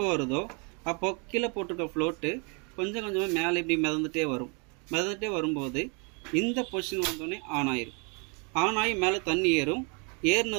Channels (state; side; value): quieter; left; 34.2 dB